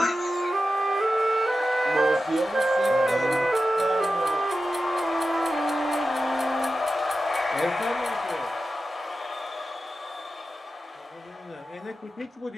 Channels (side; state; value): both; normal; correlation 0.92